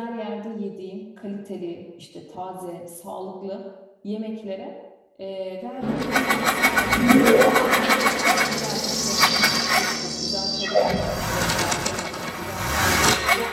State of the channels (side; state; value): both; identical; correlation 1.00